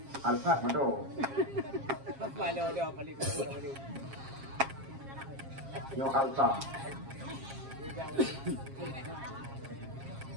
Betul. Yo Alfa.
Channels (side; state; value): left; late; 7.4 ms